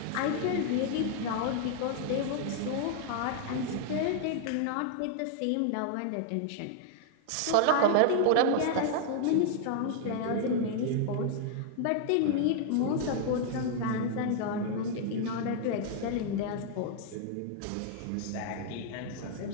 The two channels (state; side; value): different; both; correlation 0.00